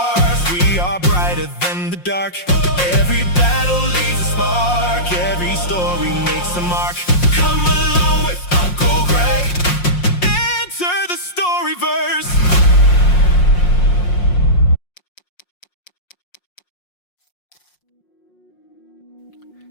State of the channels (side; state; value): right; late; 5.6 ms